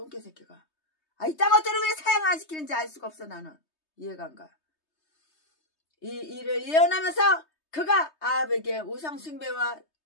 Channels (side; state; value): right; late; 3.2 ms